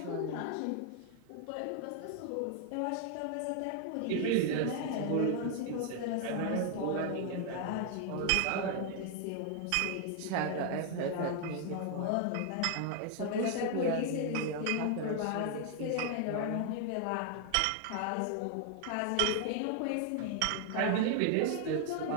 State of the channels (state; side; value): different; both; correlation 0.00